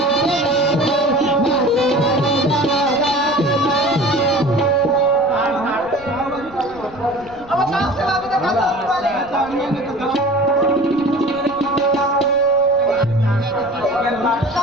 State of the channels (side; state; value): right; noise; rumble, 24 dB below the sound